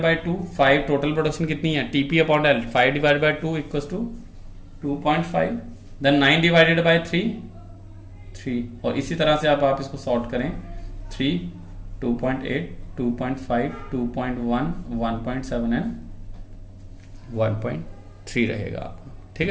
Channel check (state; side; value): identical; both; correlation 1.00